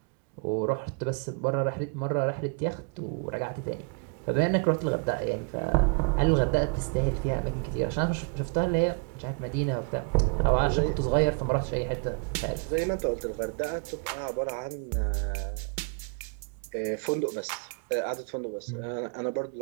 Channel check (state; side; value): quieter; left; 35.0 dB